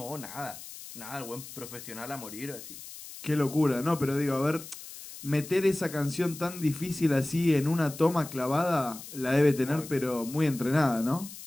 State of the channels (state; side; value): noise; left; hiss, 14 dB below the sound